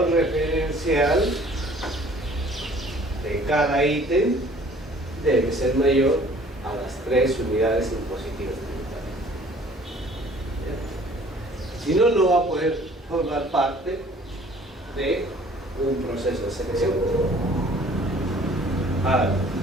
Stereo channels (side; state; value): both; normal; correlation 0.53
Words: referencial de cada ítem debe ser mayor a las 3 unidades impositivas tributarias. Si no, no va a poder formar parte de un proceso de selección. Ahora,